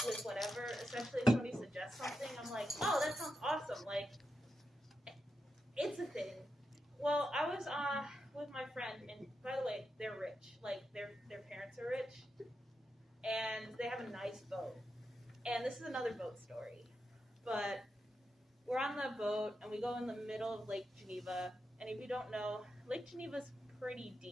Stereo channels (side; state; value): both; normal; correlation 0.87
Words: whatever, especially if somebody suggests something. I'm like, oh, that sounds awesome. Like, it's a thing. Well, I was with my friend, and by the way, they're rich. Like, their parents are rich, and they have a nice boat. And this is another boat story. But we're on the boat, and we go in the middle of Lake Geneva. And if you don't know, Lake Geneva is pretty